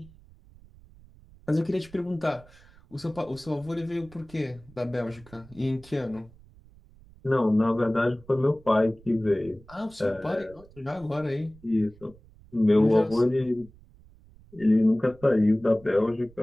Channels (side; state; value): right; noise; rumble, 24 dB below the sound